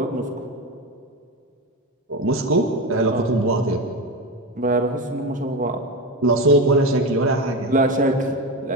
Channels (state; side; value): normal; both; correlation 0.18